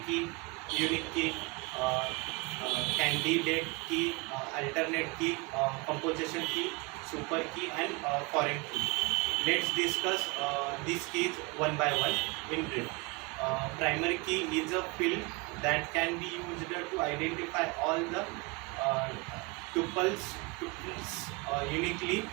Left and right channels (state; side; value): quieter; left; 27.7 dB